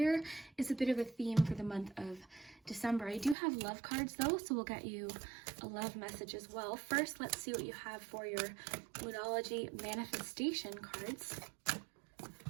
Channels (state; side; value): drops out; left; at 3.4 s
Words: is a bit of a theme for the month of December. I do have love cards though, so we'll get you a love message as well. First, let's see what you have for your Moonology manifestation cards.